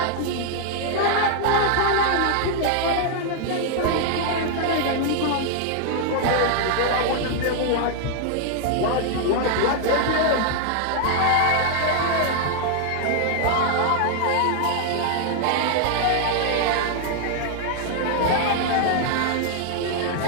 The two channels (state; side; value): different; both; correlation 0.00